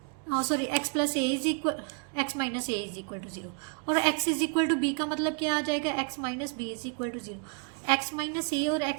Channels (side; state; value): left; quieter; 36.7 dB